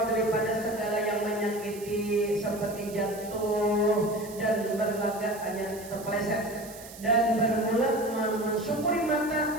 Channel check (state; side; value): noise; right; hiss, 16 dB below the sound